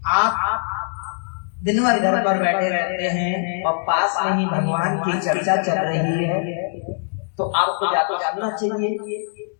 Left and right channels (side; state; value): right; silent; digital silence